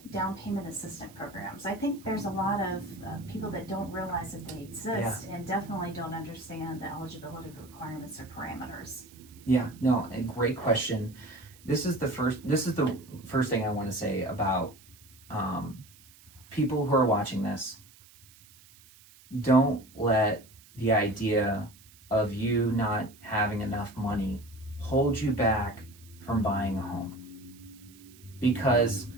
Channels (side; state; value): right; noise; hiss, 24 dB below the sound